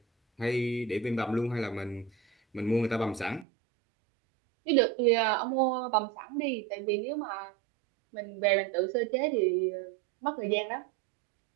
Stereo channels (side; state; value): left; drops out; at 3.5 s